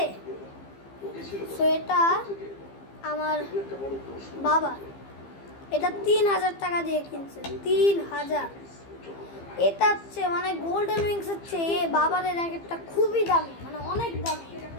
সো এটা আমার বাবা, এটা 3000 টাকা দিয়ে কিনছে, 3000। এটা হচ্ছে মানে গোল্ডেন উইংস হচ্ছে বাবার র্যাকেটটা খুবই দামি, মানে অনেক দামি,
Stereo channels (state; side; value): late; right; 15 ms